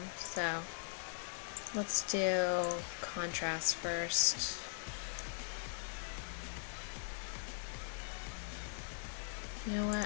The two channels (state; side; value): silent; right; 51 dB below the other